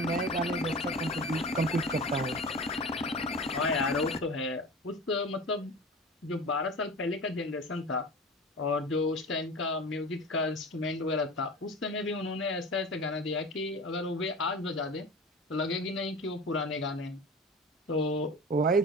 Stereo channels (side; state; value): both; normal; correlation 0.34